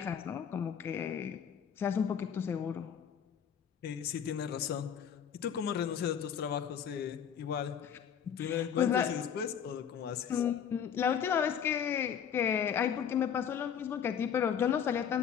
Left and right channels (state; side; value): quieter; right; 8.2 dB